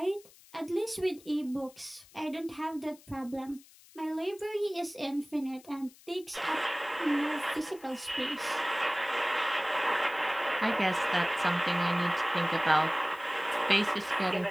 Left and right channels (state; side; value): noise; left; hiss, 24 dB below the sound